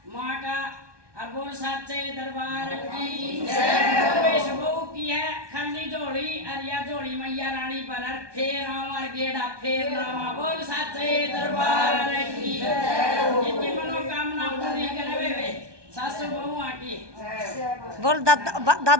माँ का और बोल सच्चे दरबार की जय। बहू की है खाली जोड़ी अरिया जोड़ी मैया रानी पर फेर और गेड़ा फेर नामा बोल सच्चे दरबार की जिनकी मनोकामना पूरी करे वे सासू बहू आकी बोल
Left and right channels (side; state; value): left; late; 1.2 ms